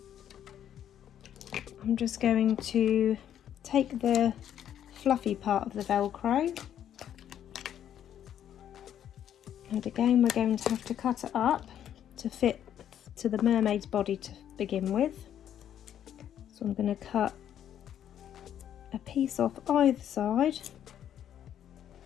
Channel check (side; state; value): right; quieter; 10.2 dB